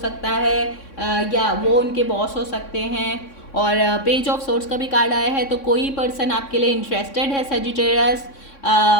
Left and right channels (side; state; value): right; late; 3.6 ms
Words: है, या वो उनके बॉस हो सकते हैं। और पेज ऑफ सोर्स का भी कार्ड आया है, तो कोई पर्सन आपके लिए इंटरेस्टेड है सेजिटेरियस,